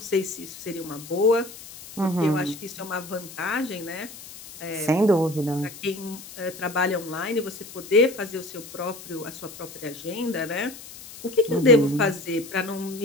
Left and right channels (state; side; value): noise; left; hiss, 15 dB below the sound